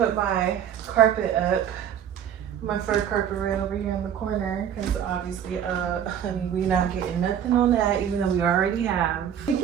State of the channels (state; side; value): quieter; left; 9.2 dB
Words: my carpet up, my fur carpet right over here in the corner, because obviously, honey, we not getting nothing on that, even though we already have. You